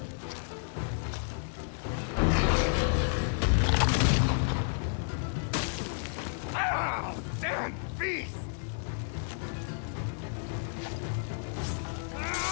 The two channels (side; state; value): right; silent; digital silence